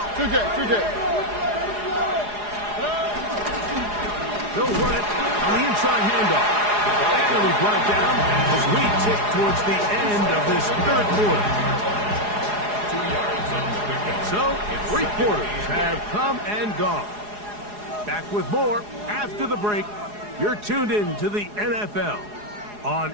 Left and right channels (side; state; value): left; late; 4.8 ms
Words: 2J. They'll run it on the inside handoff. And it'll be brought down as we tick towards the end of this third quarter. 2 yards on the pickup. So, 3 quarters have come and gone. Back with more after the break. You're tuned in to the NFL on